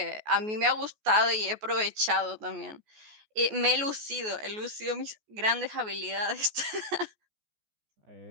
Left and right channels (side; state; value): left; late; 14 ms